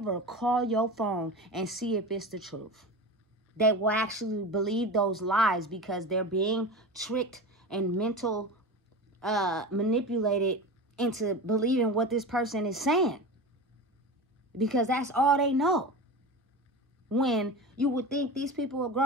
call your phone and see if it's the truth. They will actually believe those lies, because they're being tricked and manipulated into believing what this person is saying, because that's all they know. When you would think these people are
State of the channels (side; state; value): both; normal; correlation 0.28